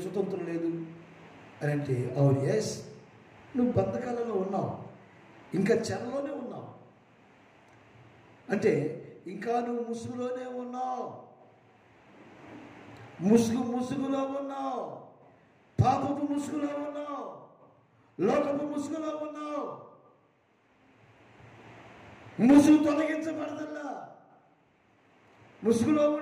లేదు అని అంటే అవును, ఎస్, నువ్వు బంధకాలలో ఉన్నావు, ఇంకా చెరలోనే ఉన్నావు, అంటే ఇంకా నువ్వు ముసుగులోనే ఉన్నావు, ముసుగులో ఉన్నావు, పాపపు ముసుగులో ఉన్నావు, లోకపు ముసుగులో ఉన్నావు. ముసుగు తొలగించబడదల్లా. ముసుగులో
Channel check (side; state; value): both; identical; correlation 1.00